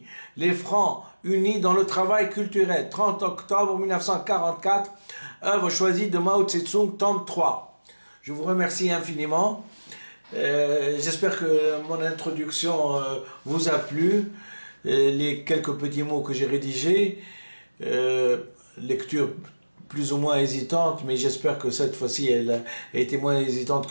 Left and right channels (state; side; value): inverted; both; correlation -1.00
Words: Les Francs unis dans le travail culturel. 30 octobre 1944, œuvre choisie de Mao Tse-tung, tome 3. Je vous remercie infiniment. J'espère que mon introduction vous a plu. Les quelques petits mots que j'ai rédigés, lecture plus ou moins hésitante, mais j'espère que cette fois-ci elle a été moins hésitante